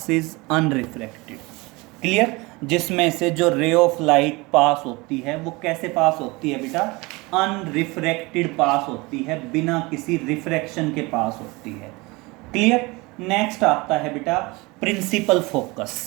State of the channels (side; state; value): left; quieter; 24.2 dB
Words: unrefracted। Clear? जिसमें से जो ray of light pass होती है वो कैसे पास होती है बेटा, अनरिफ्रैक्टेड पास होती है, बिना किसी रिफ्रैक्शन के पास होती है। क्लियर? नेक्स्ट आता है बेटा प्रिंसिपल